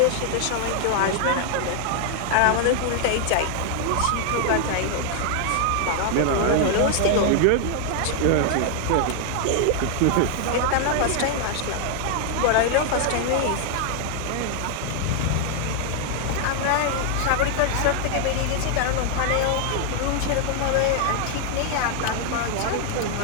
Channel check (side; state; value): both; different; correlation 0.00